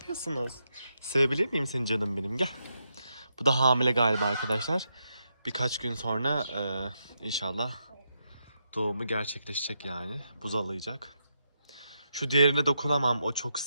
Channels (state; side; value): inverted; both; correlation -0.83